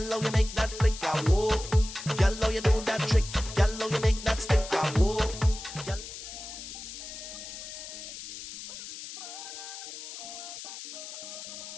how you make that flick? Ah, whoa. Girl, how you do that trick? Girl, how you make that stick? Ah, whoa. All right, guys, welcome back to the Buzz on the Go with Whitney. And right now, we have Raymond Ramnarine,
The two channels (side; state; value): left; noise; hiss, 11 dB below the sound